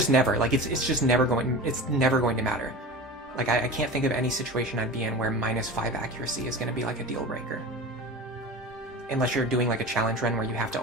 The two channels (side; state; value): both; normal; correlation 0.32